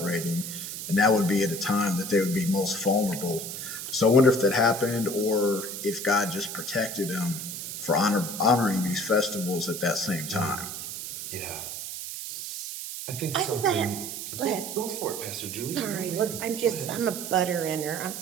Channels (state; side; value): noise; right; hiss, 7 dB below the sound